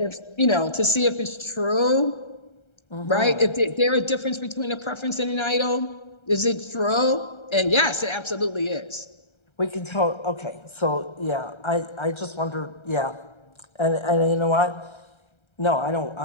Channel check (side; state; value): right; late; 1.3 ms